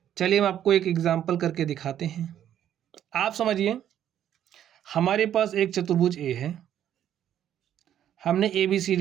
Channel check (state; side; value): quieter; left; 10.6 dB